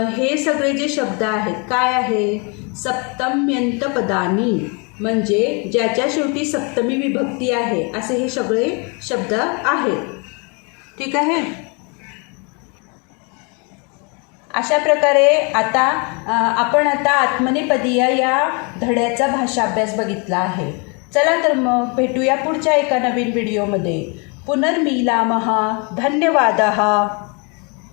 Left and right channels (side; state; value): right; quieter; 33.0 dB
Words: हे सगळे जे शब्द आहेत काय आहे, सप्तम्यंत पदानी म्हणजे ज्याच्या शेवटी सप्तमी विभक्ती आहे असे हे सगळे शब्द आहेत. ठीक आहे. अशा प्रकारे आता आपण आत्मनेपदीय या धड्याचा भाषा अभ्यास बघितला आहे. चला तर मग भेटूया पुढच्या एका नवीन व्हिडिओमध्ये. पुनर्मिलामः. धन्यवादः.